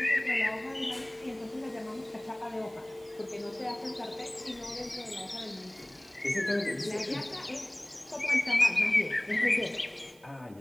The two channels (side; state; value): right; noise; hiss, 27 dB below the sound